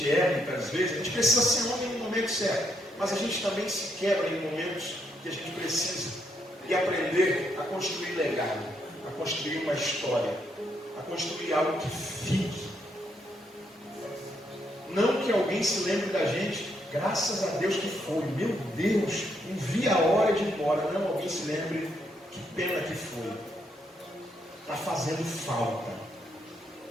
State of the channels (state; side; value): normal; both; correlation 0.76